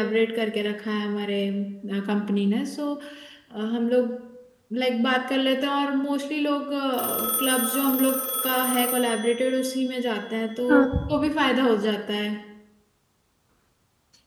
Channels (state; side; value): identical; both; correlation 1.00